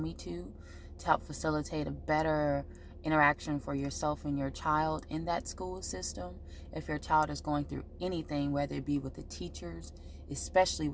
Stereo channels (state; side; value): identical; both; correlation 1.00